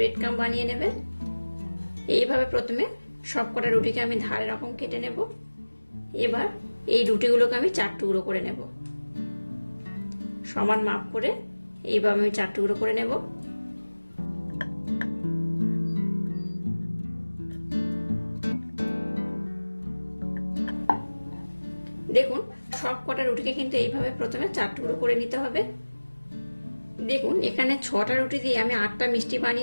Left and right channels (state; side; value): inverted; both; correlation -1.00